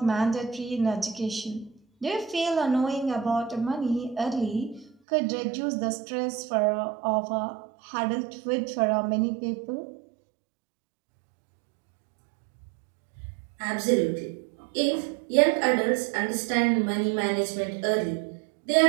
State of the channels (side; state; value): left; drops out; at 5.0 s